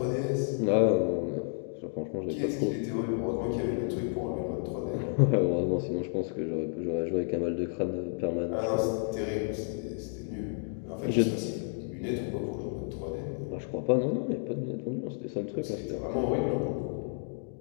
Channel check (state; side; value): silent; right; 57 dB below the other